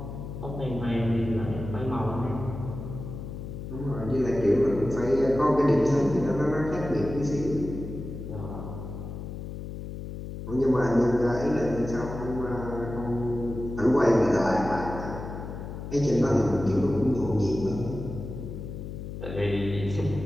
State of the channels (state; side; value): noise; left; hum, 8 dB below the sound